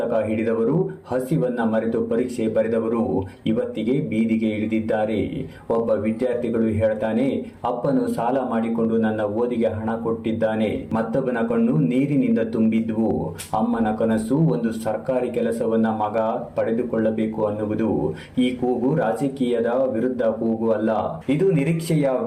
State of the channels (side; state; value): both; identical; correlation 1.00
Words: ಹಿಡಿದವರು, ಹಸಿವನ್ನ ಮರೆತು ಪರೀಕ್ಷೆ ಬರೆದವರು ಇವತ್ತಿಗೆ ಬೀದಿಗೆ ಇಳಿದಿದ್ದಾರೆ. ಒಬ್ಬ ವಿದ್ಯಾರ್ಥಿಗಳು ಹೇಳ್ತಾನೆ, ಅಪ್ಪನು ಸಾಲ ಮಾಡಿಕೊಂಡು ನನ್ನ ಓದಿಗೆ ಹಣ ಕೊಟ್ಟಿದ್ದಾನೆ. ಮತ್ತೊಬ್ಬನ ಕಣ್ಣು ನೀರಿನಿಂದ ತುಂಬಿದ್ವು. ಅಮ್ಮನ ಕನಸು ಒಂದು ಸರ್ಕಾರಿ ಕೆಲಸವನ್ನ ಮಗ ಪಡೆದುಕೊಳ್ಳಬೇಕು ಅನ್ನುವುದು. ಈ ಕೂಗು ರಾಜಕೀಯದ ವಿರುದ್ಧ ಕೂಗು ಅಲ್ಲ, ಇದು ನಿರೀಕ್ಷೆಯ